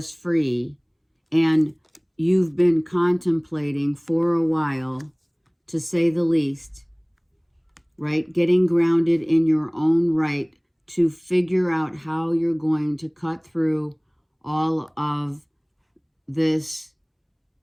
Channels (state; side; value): identical; both; correlation 1.00